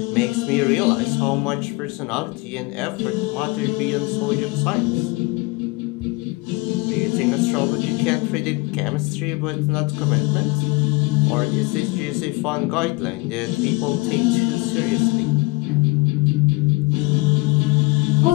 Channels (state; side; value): quieter; right; 24.1 dB